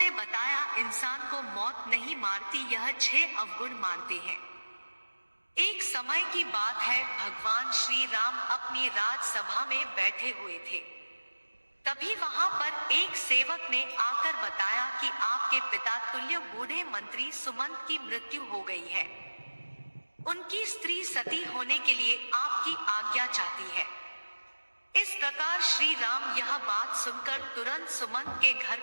बताया, इंसान को मौत नहीं मारती, यह 6 अवगुण मारते हैं। एक समय की बात है, भगवान श्री राम अपनी राजसभा में बैठे हुए थे। तभी वहां पर एक सेवक ने आकर बताया कि आपके पिता तुल्य बूढ़े मंत्री सुमंत की मृत्यु हो गई है। उनकी स्त्री सती होने के लिए आपकी आज्ञा चाहती है। इस प्रकार श्री राम यह बात सुनकर तुरंत सुमंत के घर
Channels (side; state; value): both; inverted; correlation -1.00